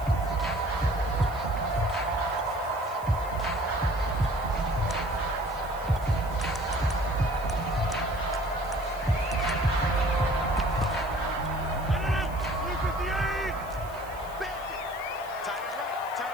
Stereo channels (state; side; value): noise; right; hiss, 22 dB below the sound